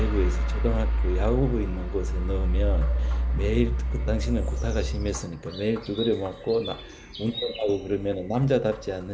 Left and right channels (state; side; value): identical; both; correlation 1.00